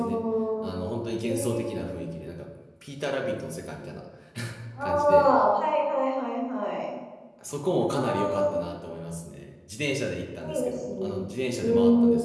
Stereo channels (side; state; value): both; identical; correlation 1.00